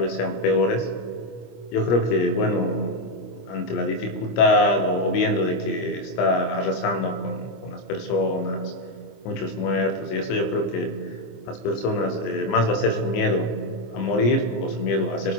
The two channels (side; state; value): right; late; 25 ms